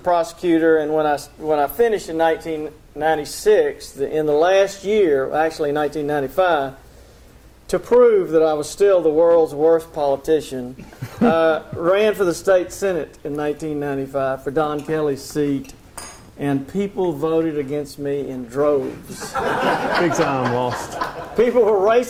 and when I finished in 1996, in the last year, actually 1995, to prove that I was still the world's worst politician, ran for the state senate in 1995 for Don Kelly's seat, and people voted against me in droves. Big time lost. People were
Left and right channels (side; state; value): both; identical; correlation 1.00